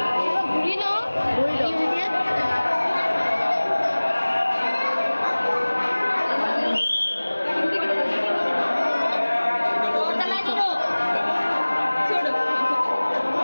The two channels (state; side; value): inverted; both; correlation -1.00